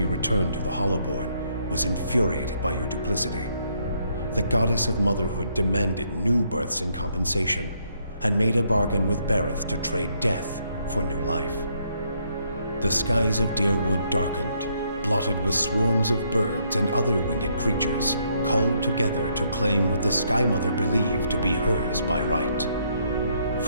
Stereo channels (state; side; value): inverted; both; correlation -0.72